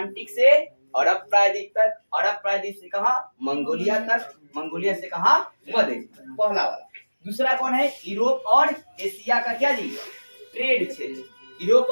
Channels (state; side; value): inverted; both; correlation -1.00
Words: से अरब प्रायद्वीप तक, अरब प्रायद्वीप से कहा, मंगोलिया तक, मंगोलिया से कहा, मध्य, पहला वाला। दूसरा कौन है, यूरोप और एशिया का क्या जी, ट्रेड क्षेत्र, यूरोप